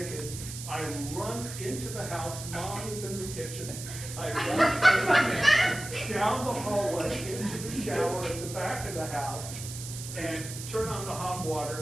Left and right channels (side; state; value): right; noise; hiss, 10 dB below the sound